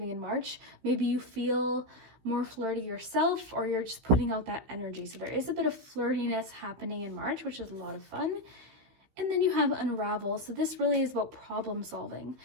in March, maybe you feel more flirty yourself, or you're just putting out that energy. So there is a bit of flirtiness happening in March, which is a lot of fun. And then you have unravel. So this really is about problem solving.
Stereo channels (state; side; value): late; left; 16 ms